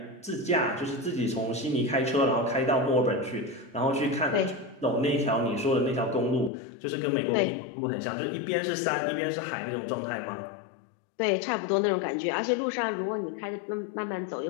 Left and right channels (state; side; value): drops out; right; at 6.5 s